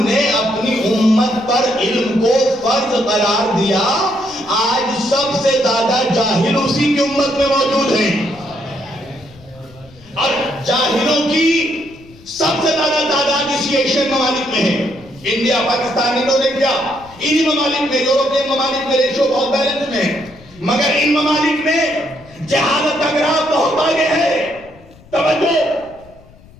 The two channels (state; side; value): noise; left; rumble, 24 dB below the sound